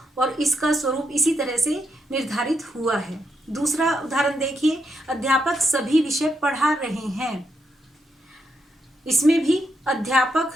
और इसका स्वरूप इसी तरह से निर्धारित हुआ है। दूसरा उदाहरण देखिए, अध्यापक सभी विषय पढ़ा रहे हैं। इसमें भी अध्यापक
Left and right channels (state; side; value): normal; both; correlation 0.81